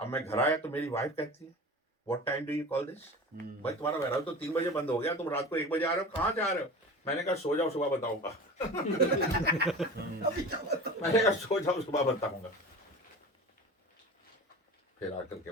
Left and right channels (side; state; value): both; normal; correlation 0.34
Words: मैं घर आया तो मेरी वाइफ कहती है, what time do you call this? भाई तुम्हारा वेयरहाउस तो 3 बजे बंद हो गया, तुम रात को 1 बजे आ रहे हो, कहाँ जा रहे हो? मैंने कहा, सो जाओ, सुबह बताऊंगा। मैंने कहा, सो जाओ, सुबह बताऊंगा। फिर आकर के